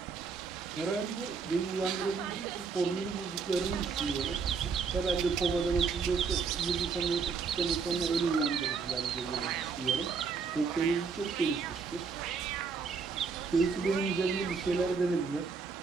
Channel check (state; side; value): quieter; left; 5.3 dB